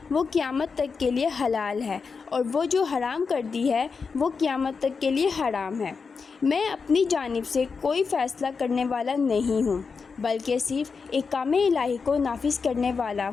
وہ قیامت تک کے لیے حلال ہے، اور وہ جو حرام کر دی ہے وہ قیامت تک کے لیے حرام ہے۔ میں اپنی جانب سے کوئی فیصلہ کرنے والا نہیں ہوں، بلکہ صرف احکام الہی کو نافذ کرنے والا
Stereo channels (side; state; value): right; quieter; 5.1 dB